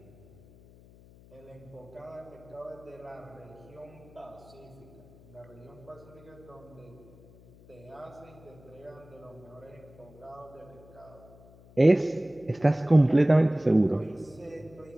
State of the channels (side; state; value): left; noise; hum, 23 dB below the sound